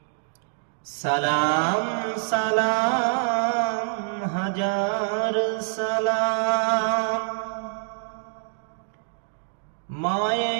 সালাম সালাম হাজার সালাম,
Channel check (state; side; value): silent; left; digital silence